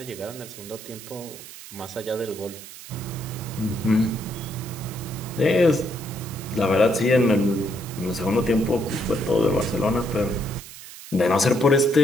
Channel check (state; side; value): noise; right; hiss, 15 dB below the sound